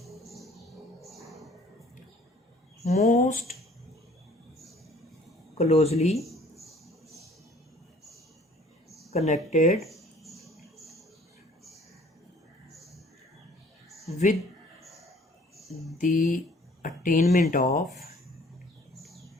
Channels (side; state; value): both; normal; correlation 0.55